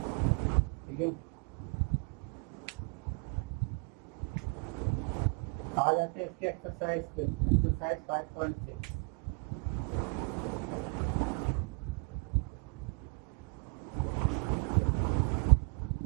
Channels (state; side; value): quieter; left; 36.9 dB